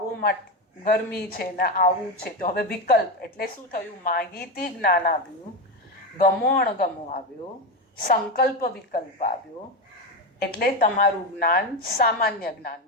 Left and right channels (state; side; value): normal; both; correlation 0.13